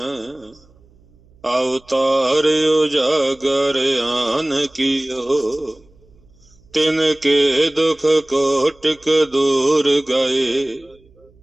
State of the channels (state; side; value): noise; right; hum, 30 dB below the sound